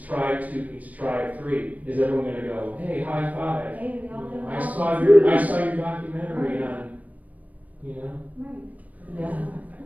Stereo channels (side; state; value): left; late; 0.073 ms